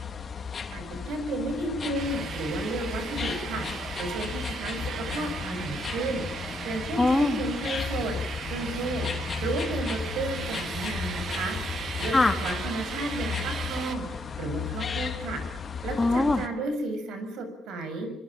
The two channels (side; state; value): both; normal; correlation 0.74